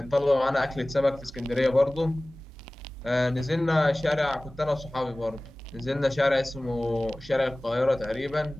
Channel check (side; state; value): both; normal; correlation 0.98